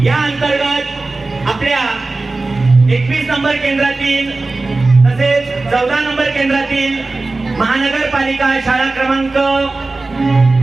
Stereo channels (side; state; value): left; quieter; 3.4 dB